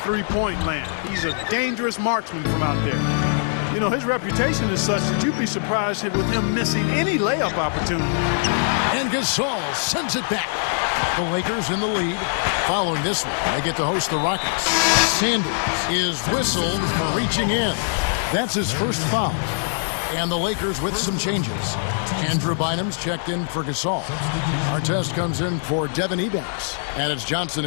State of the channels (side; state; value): right; silent; digital silence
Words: land. He's a dangerous marksman from out there. You know, his reputation is such that you'd be surprised with him missing any layup opportunity. And Gasol sends it back. The Lakers in the lead. Following this one, they get to host the Rockets. Sanders is whistled for reaching in. That's his first foul. And the Lakers with some changes. Andrew Bynum's checked in for Gasol. Artest comes in for Devin Ebanks. And it's Johnson